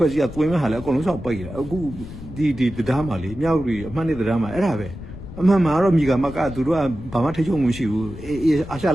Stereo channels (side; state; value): left; noise; rumble, 13 dB below the sound